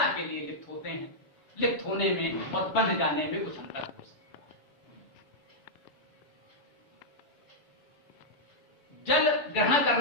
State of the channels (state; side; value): late; right; 7.0 ms